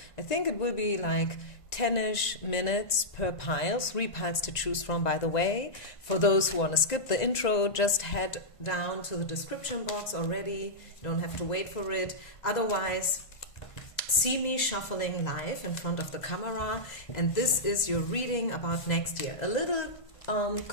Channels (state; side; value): late; right; 1.5 ms